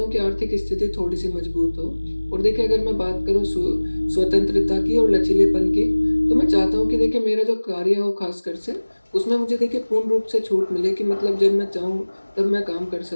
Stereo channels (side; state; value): both; inverted; correlation -1.00